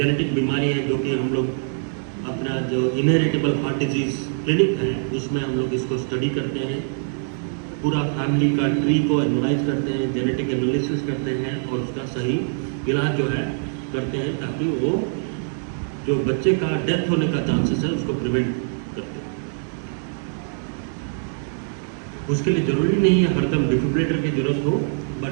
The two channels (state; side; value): silent; left; 63 dB below the other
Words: बीमारी है जो कि हम लोग अपना जो इनहेरिटेबल हार्ट डिजीज़ क्लिनिक है उसमें हम लोग इसको स्टडी करते हैं, पूरा फैमिली का ट्री को एनालाइज करते हैं, जेनेटिक एनालिसिस करते हैं और उसका सही इलाज जो है करते हैं, ताकि वो जो बच्चे का डेथ होने का चांसेस है उसको प्रिवेंट करते हैं। उसके लिए ज़रूरी नहीं है हरदम डिफिब्रिलेटर की ज़रूरत हो,